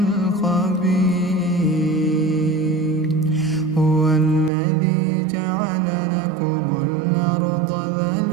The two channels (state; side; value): drops out; left; at 4.5 s